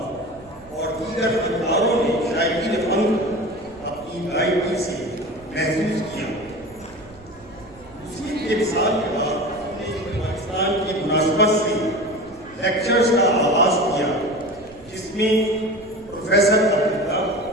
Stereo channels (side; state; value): right; noise; rumble, 25 dB below the sound